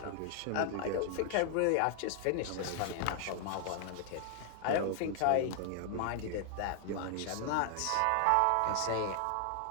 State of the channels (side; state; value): both; different; correlation 0.00